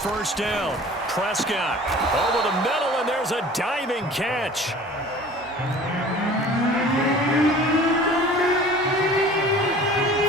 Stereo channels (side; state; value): both; normal; correlation 0.45